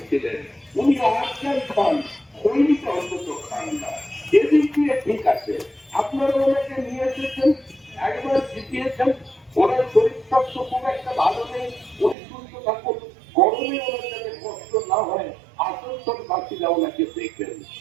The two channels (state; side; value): drops out; left; at 12.2 s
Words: ছিলেন। উনি আজকাল খান, সৈনিক অন্তত খান না। এদিক দিয়ে ঠিক আছে। আপনারা ওনাকে নিয়ে এসেছেন, একবার জিতিয়েছেন। ওনার শরীর স্বাস্থ্য খুব একটা ভালো নেই, উনি সুস্থ থাকুন, গরমে ওনার যাতে কষ্ট না হয়, আসানসোল বাসীরা ওনাকে দেখবেন।